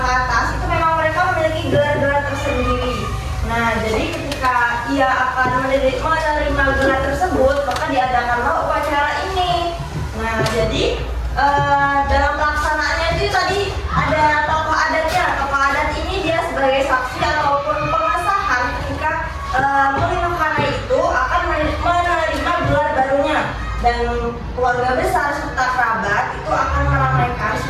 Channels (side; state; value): both; identical; correlation 1.00